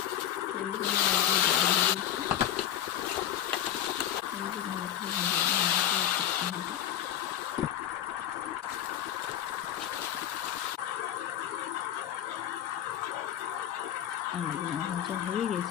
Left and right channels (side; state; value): right; quieter; 11.1 dB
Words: আলুগুলো ভাজা হয়ে